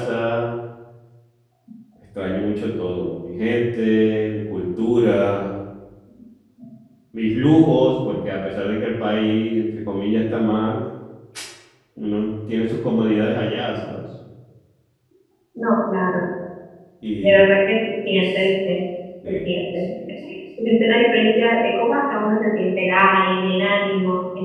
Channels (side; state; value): both; identical; correlation 1.00